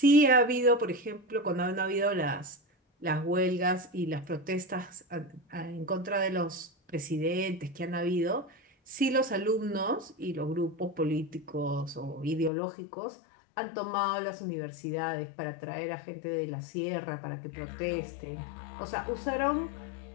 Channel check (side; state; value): right; drops out; at 12.5 s